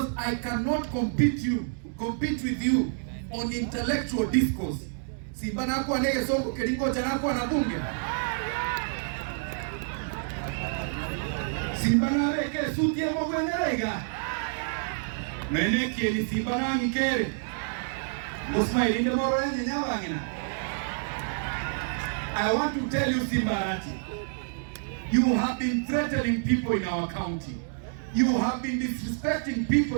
I cannot compete with you on intellectual discourse. Simba nakuwa nege songo kelingo chanakuwa na bunge. Simba na reke suti ya mwengerega. Meneki ni Simba na ngikere. Musma ilinde moro yenye nyawangina. I want to tell you, Simba Arati, you have been threatening people in our county. You have been disrespecting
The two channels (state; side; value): silent; left; digital silence